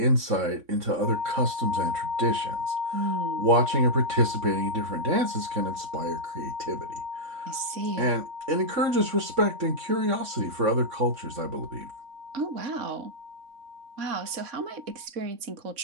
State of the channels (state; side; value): late; left; 3.6 ms